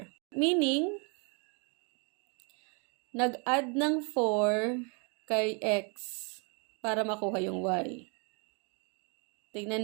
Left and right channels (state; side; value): quieter; left; 34.5 dB